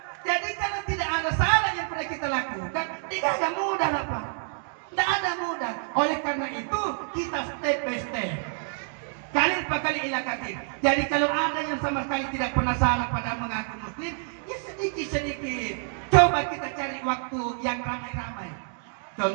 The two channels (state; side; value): silent; left; 56 dB below the other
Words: Jadi kalau tidak ada salah yang pernah kita lakukan, tidak ada mudah lah Pak. Tidak ada mudah. Oleh karena itu kita step by step. Kali per kali ilakatir. Jadi kalau ada yang sama sekali tidak pernah salah pada mengaku muslim, ya sedikit-sedikit. Coba kita cari waktu yang ramai-ramai.